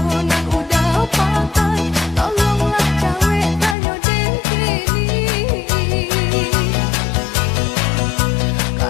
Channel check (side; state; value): right; drops out; at 3.8 s